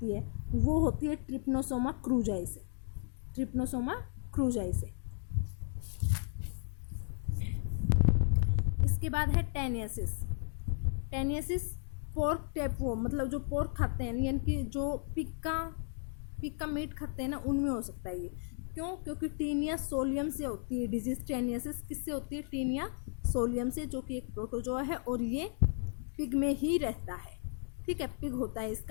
है, वो होती है ट्रिप्नोसोमा क्रूजाई से। ट्रिप्नोसोमा क्रूजाई से। इसके बाद है टेनियसिस। टेनियसिस पोर्क टेपवॉर्म, मतलब जो पोर्क खाते हैं यानी कि जो पिग का मीट खाते हैं ना, उनमें हो सकता है ये। क्यों? क्योंकि टीनिया सोलियम से होती है डिजीज। टेनियसिस किससे होती है? टीनिया सोलियम से, जो कि एक प्रोटोजोआ है और ये पिग में ही रहता है। ठीक है, पिग होता है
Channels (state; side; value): silent; right; 55 dB below the other